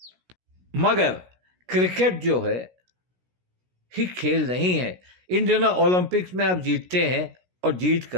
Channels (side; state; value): left; late; 16 ms